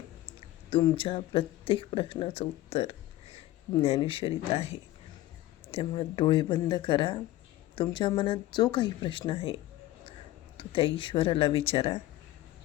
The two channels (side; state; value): right; quieter; 15.8 dB